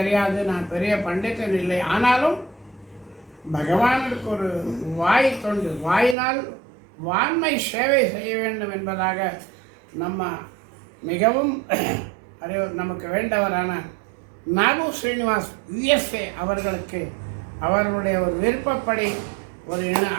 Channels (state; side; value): drops out; left; at 6.2 s